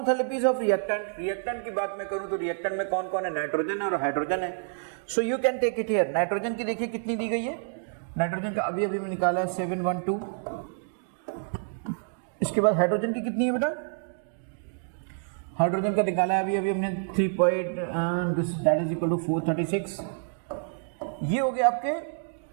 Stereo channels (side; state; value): left; silent; digital silence